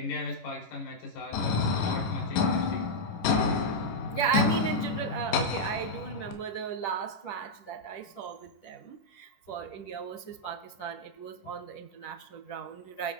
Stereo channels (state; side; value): late; right; 10 ms